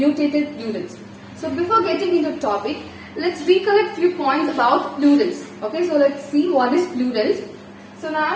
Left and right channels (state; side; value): identical; both; correlation 1.00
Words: plurals. So before getting into the topic, let's recollect few points about plurals. Okay, so let's see what is plurals. So